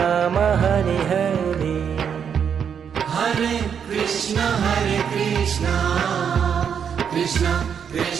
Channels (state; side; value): quieter; left; 7.6 dB